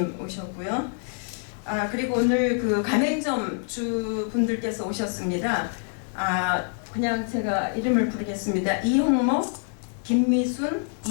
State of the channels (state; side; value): silent; right; 60 dB below the other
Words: 오셨고요. 그리고 오늘 그 가맹점 주분들께서 오셨습니다. 그냥 제가 이름을 부르겠습니다. 이홍목, 김미순,